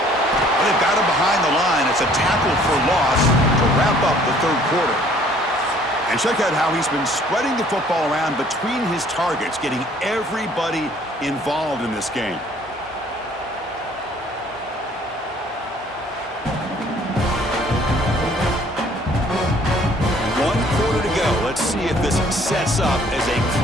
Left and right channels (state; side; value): normal; both; correlation 0.58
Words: got him behind the line. It's a tackle for loss to wrap up the 3rd quarter. And check out how he's been spreading the football around between his targets, getting everybody involved in this game. Let's see if this sets up as a